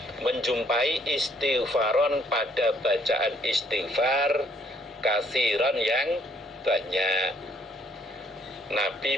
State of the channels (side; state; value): both; normal; correlation 0.65